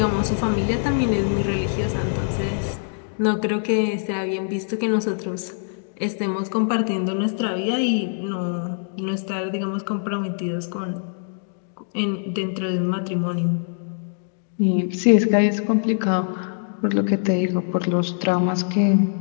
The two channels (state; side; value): silent; right; digital silence